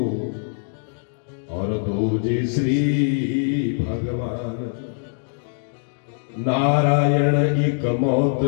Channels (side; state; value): right; silent; digital silence